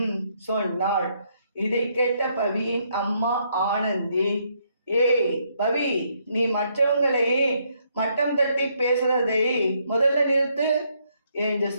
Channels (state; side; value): inverted; both; correlation -0.73